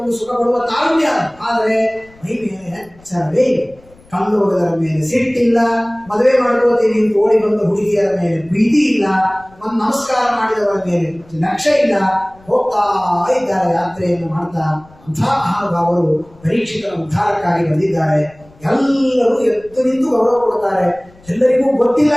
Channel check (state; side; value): noise; left; rumble, 27 dB below the sound